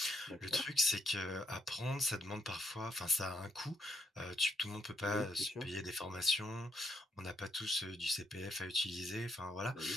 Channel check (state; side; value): normal; both; correlation 0.75